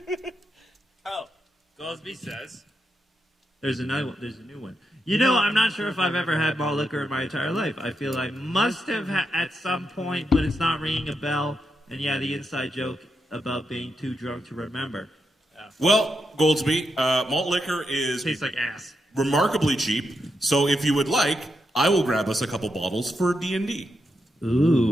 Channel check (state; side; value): normal; both; correlation 0.84